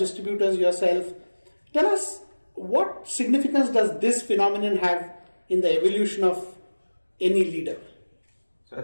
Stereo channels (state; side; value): inverted; both; correlation -1.00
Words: yourself. Tell us, what significance does this phenomenon have in the evolution of any leader? So I